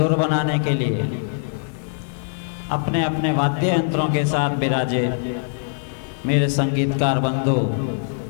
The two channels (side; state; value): right; silent; digital silence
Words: बनाने के लिए अपने अपने वाद्य यंत्रों के साथ विराजे मेरे संगीतकार बंधु,